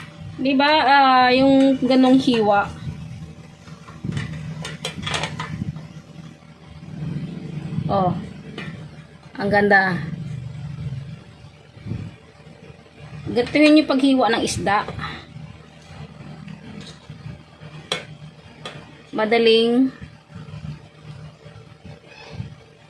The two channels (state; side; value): identical; both; correlation 1.00